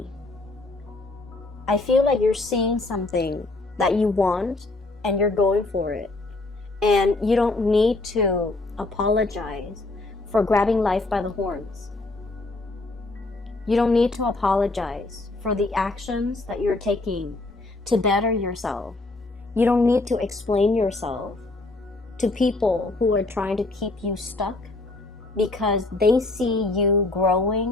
I feel like you're seeing something that you want and you're going for it. And you don't need to apologize for grabbing life by the horns. You don't need to apologize for the actions that you're taking to better yourself. You don't need to explain yourself to people who are trying to keep you stuck because they see you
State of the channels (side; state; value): right; quieter; 3.1 dB